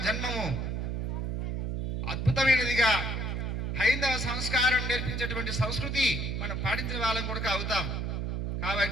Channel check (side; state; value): right; noise; hum, 2 dB below the sound